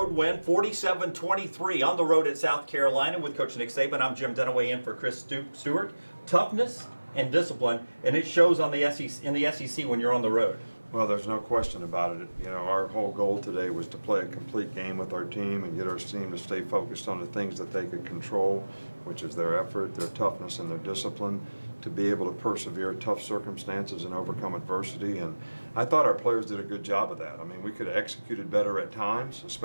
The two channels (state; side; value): inverted; both; correlation -1.00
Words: win, 47-23 on the road at South Carolina with Coach Nick Saban. I'm Jim Dunaway in for Chris Stewart. Toughness and discipline, and it shows on the SEC, in the SEC when you're on the road. Well, there's no question about it. You know, our whole goal today was to play a complete game with our team and get our team to stay focused on the things that they could control, which is their effort, their toughness, and their discipline, to be able to persevere tough circumstances and overcome adversity. And I thought our players did a good job of that. I mean, we could have executed better at times,